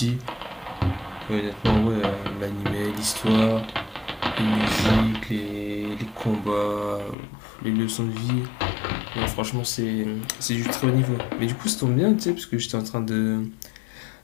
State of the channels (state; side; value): drops out; right; at 7.2 s